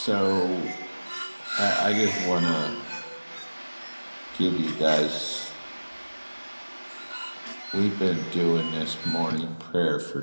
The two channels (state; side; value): inverted; both; correlation -1.00